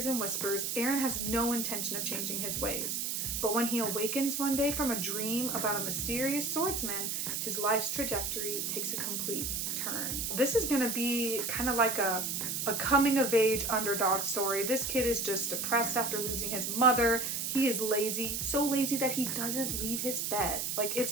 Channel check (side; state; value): right; noise; hiss, 1 dB below the sound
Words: and whispers, Aaron has no intention of changing his ways. But when he awakens one day from a dream about a mysterious swordsman, his life's trajectory takes a complete turn. This is going to be kind of like a coming-of-age underdog story. This kid is just depressed after losing his mother. He is lazy, so lazy that he doesn't leave his bed. Like,